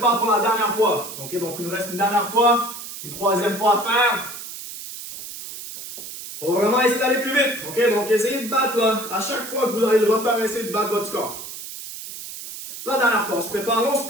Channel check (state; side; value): noise; right; hiss, 11 dB below the sound